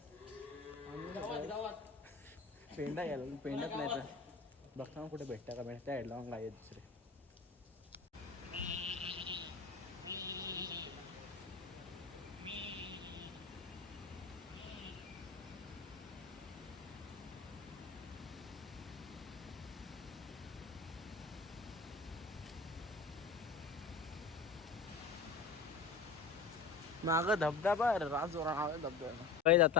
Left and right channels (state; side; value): quieter; right; 4.5 dB